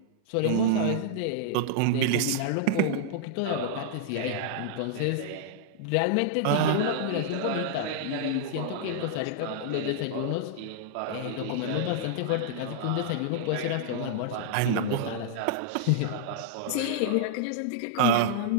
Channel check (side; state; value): both; different; correlation -0.02